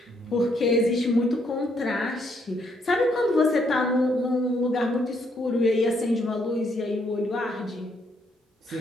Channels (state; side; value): normal; both; correlation 0.72